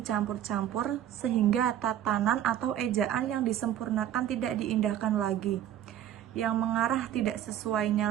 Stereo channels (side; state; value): left; quieter; 11.1 dB